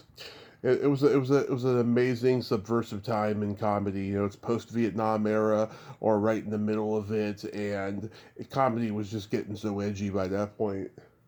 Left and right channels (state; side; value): identical; both; correlation 1.00